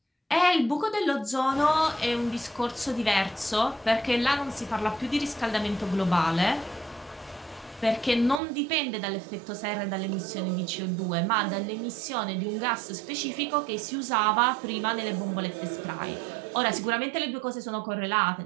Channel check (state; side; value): drops out; left; at 8.4 s